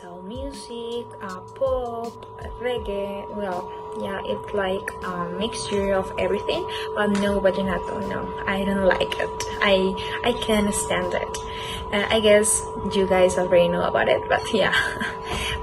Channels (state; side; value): identical; both; correlation 1.00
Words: music, pop, reggae. Well, yeah, it's like a mixture of everything, but no vallenato. No, I don't like it. I can't stand it. I guess you guys already know about it, but yeah.